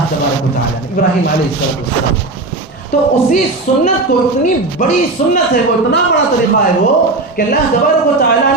تبارک و تعالیٰ نے، ابراہیم علیہ السلام. تو اسی سنت کو، اتنی بڑی سنت ہے وہ، اتنا بڑا طریقہ ہے وہ کہ اللہ تبارک و تعالیٰ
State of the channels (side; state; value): left; quieter; 3.2 dB